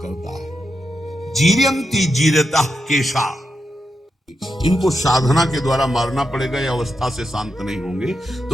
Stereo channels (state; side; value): normal; both; correlation 0.86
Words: है। जीर्यंती जीर्यता केशा, इनको साधना के द्वारा मारना पड़ेगा, ये अवस्था से शांत नहीं होंगे।